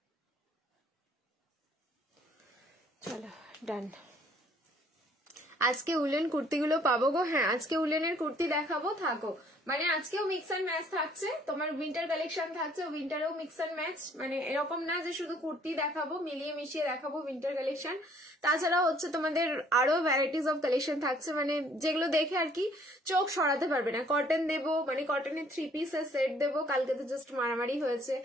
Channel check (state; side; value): normal; both; correlation 0.60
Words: চলো ডান। আজকে উলেন কুর্তিগুলো পাবো গো? হ্যাঁ, আজকে উলেনের কুর্তি দেখাবো, থাকো। মানে আজকেও মিক্স অ্যান্ড ম্যাচ থাকছে, তোমার উইন্টার কালেকশন থাকছে, উইন্টারেও মিক্স অ্যান্ড ম্যাচ। মানে এরকম না যে শুধু কুর্তি দেখাবো, মিলিয়ে মিশিয়ে দেখাবো উইন্টার কালেকশন। তাছাড়াও হচ্ছে তোমাদের আরো ভ্যারাইটিস অফ কালেকশন থাকছে, মানে যেগুলো দেখে আর কি চোখ সরাতে পারবে না। কটন দেবো, মানে কটনের 3 পিসের সেট দেবো। কালকে তো জাস্ট মারামারি হয়েছে